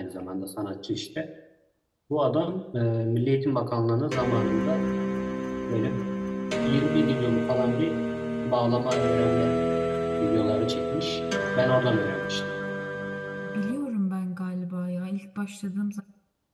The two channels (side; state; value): both; identical; correlation 1.00